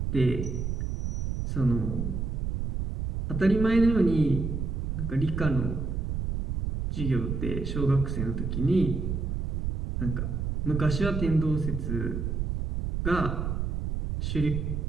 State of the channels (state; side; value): noise; right; rumble, 2 dB below the sound